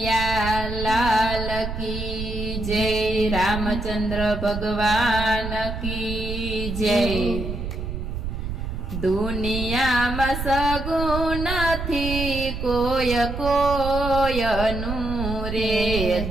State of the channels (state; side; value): noise; right; rumble, 5 dB below the sound